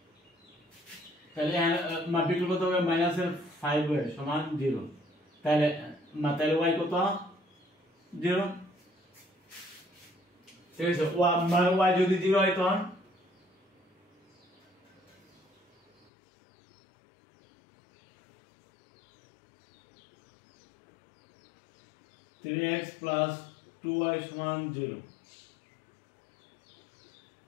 তাহলে বিকল্প কত হবে -5y সমান 0। তাহলে y কত 0। ঠিক আছে, y যদি 0 হয় তখন 3x plus 2y সমান 0।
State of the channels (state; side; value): drops out; right; at 16.1 s